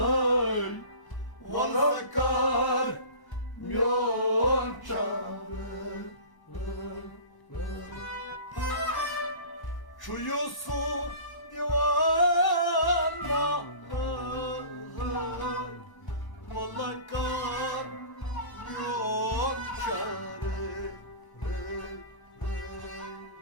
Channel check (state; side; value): late; right; 1.0 ms